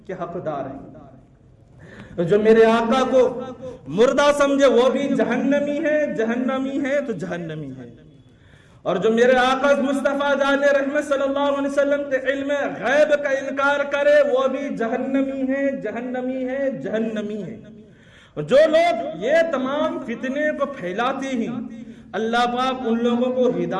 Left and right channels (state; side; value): identical; both; correlation 1.00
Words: کے حقدار ہے۔ جو میرے آقا کو مردہ سمجھے وہ بھی جہنمی ہے، جہنمی ہے تو جہنمی ہے۔ اور جو میرے آقا مصطفیٰ جان رحمت صلی اللہ علیہ وسلم کے علم غیب کا انکار کرے وہ بھی جہنمی ہے، جہنمی ہے، جہنمی ہے۔ جو لوگ یہ تمام فتنے کو پھیلاتے ہیں اللہ پاک ان لوگوں کو